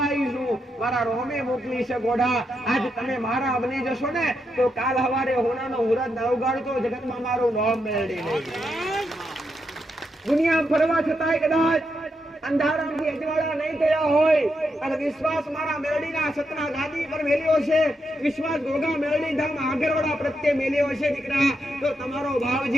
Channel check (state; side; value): normal; both; correlation 0.83